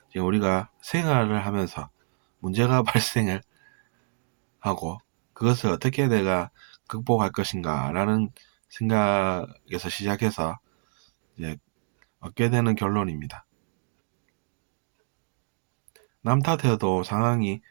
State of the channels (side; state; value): left; silent; digital silence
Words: 이제 우리가 생활을 하면서 문제가 발생을 하고 그것을 어떻게 내가 극복할 것인가 라는 생각에서 시작해서 이제 얻게 되는 결론입니다. 남 탓해도 상황이